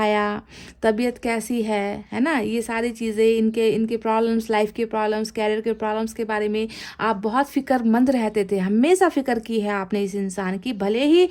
तबीयत कैसी है ना, ये सारी चीज़ें, इनके प्रॉब्लम्स, लाइफ के प्रॉब्लम्स, कैरियर के प्रॉब्लम्स के बारे में आप बहुत फिक्रमंद रहते थे। हमेशा फिक्र की है आपने इस इंसान की। भले ही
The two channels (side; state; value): both; identical; correlation 1.00